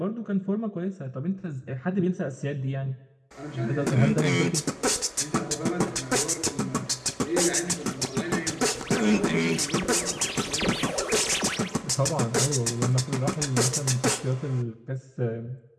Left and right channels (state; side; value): identical; both; correlation 1.00